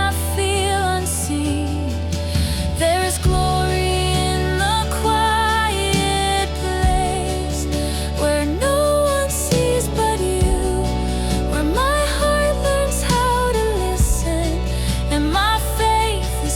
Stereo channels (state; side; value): identical; both; correlation 1.00